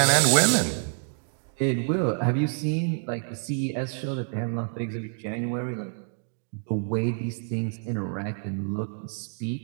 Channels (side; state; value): left; silent; 58 dB below the other